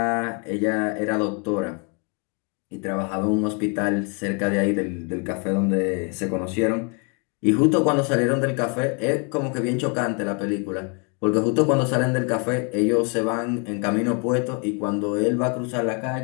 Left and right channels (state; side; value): quieter; right; 36.4 dB